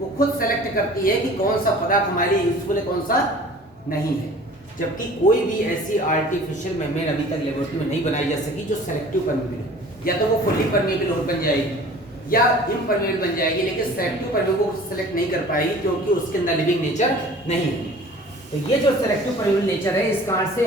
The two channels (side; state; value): both; normal; correlation 0.46